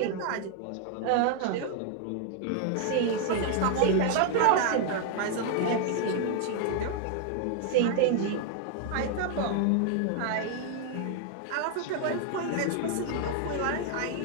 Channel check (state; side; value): different; both; correlation 0.00